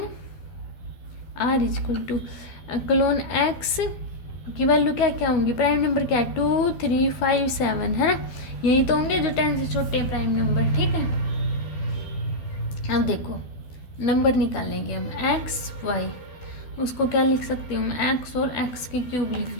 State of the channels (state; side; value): late; right; 12 ms